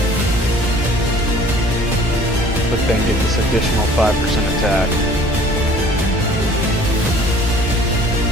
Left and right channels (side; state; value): both; normal; correlation 0.51